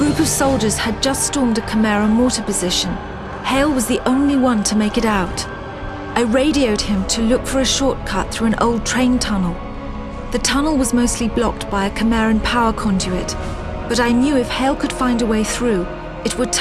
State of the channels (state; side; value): identical; both; correlation 1.00